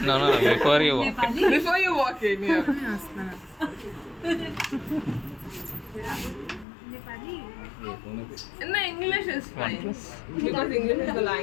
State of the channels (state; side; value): drops out; right; at 6.7 s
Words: No, before you walk. Before you walk in, yeah. No, English is fine. Because English is the